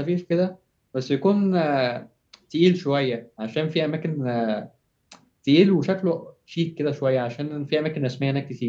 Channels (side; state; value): both; identical; correlation 1.00